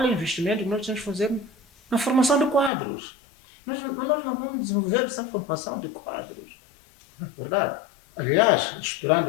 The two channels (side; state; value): right; drops out; at 2.7 s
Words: é o investimento que nós temos que fazer na formação de quadros? Nós não vamos desenvolver essa formação de quadros. Não é verdade? Aliás, esperando